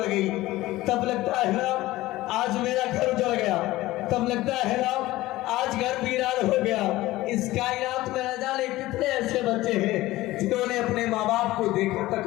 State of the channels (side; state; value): right; quieter; 17.5 dB